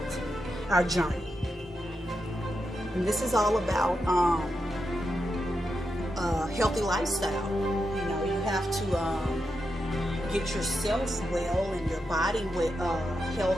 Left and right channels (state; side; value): normal; both; correlation 0.86